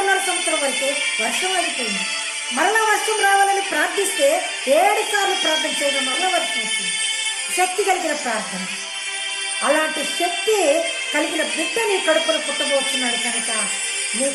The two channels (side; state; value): both; identical; correlation 1.00